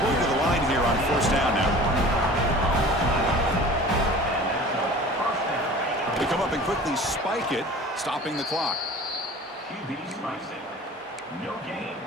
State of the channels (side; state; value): both; normal; correlation 0.42